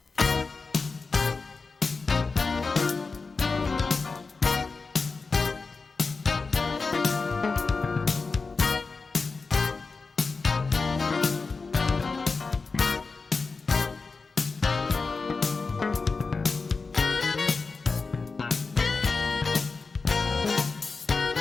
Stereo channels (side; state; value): right; quieter; 4.3 dB